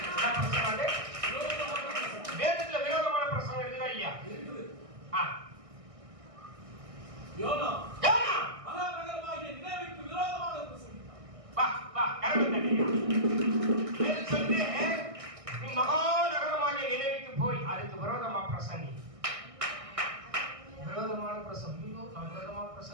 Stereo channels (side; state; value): left; late; 1.6 ms